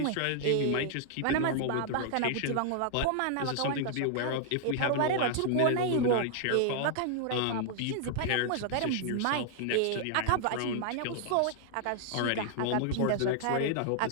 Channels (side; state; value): both; different; correlation 0.00